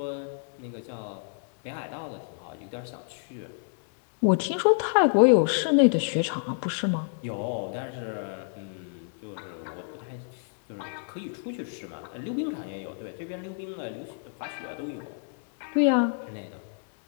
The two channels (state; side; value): silent; right; digital silence